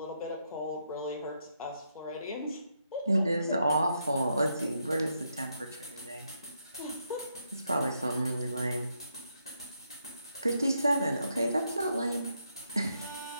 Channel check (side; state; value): both; inverted; correlation -0.80